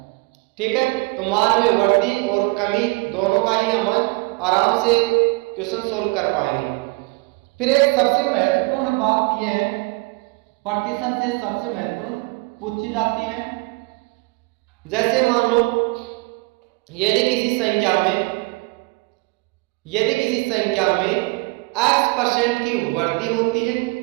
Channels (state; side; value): quieter; left; 26.0 dB